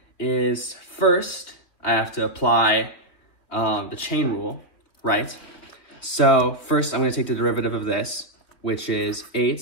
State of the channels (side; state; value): right; late; 3.6 ms